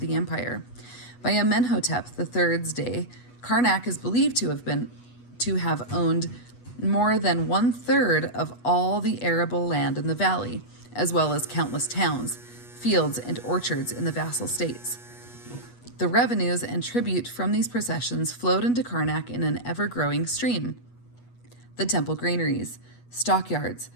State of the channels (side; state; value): right; late; 8.2 ms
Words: empire. By Amenhotep III's day, Karnak is believed to have owned more than 1/3 of all the arable land in the valley, as well as countless towns, fields, and orchards in the vassal states. The revenues and tribute from these possessions flowed into Karnak in an ever-growing stream. The temple granaries, stockyards,